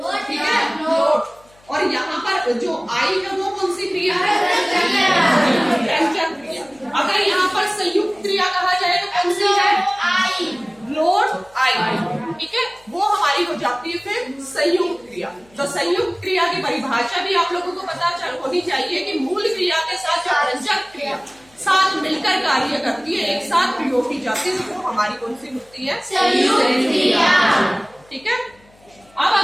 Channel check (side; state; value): left; noise; hum, 30 dB below the sound